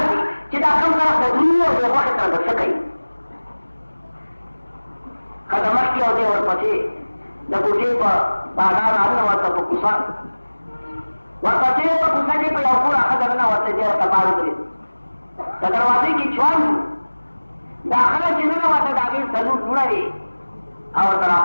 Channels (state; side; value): inverted; both; correlation -1.00